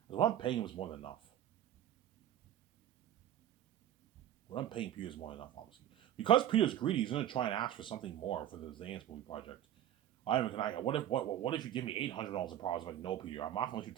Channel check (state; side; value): quieter; left; 11.6 dB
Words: because what I'm paying him is more than enough. What I'm paying Peter is more than enough, obviously. Because Peter's greedy, he's going to try and ask for something more for the Zanis movie project. What if you give me $800 a profit? I'm like, no, Peter, I'm not going to let you